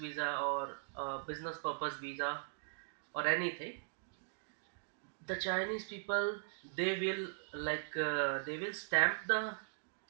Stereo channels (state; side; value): silent; left; digital silence